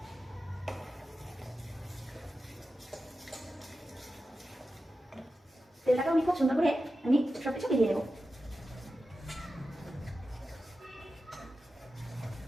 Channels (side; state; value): both; normal; correlation 0.92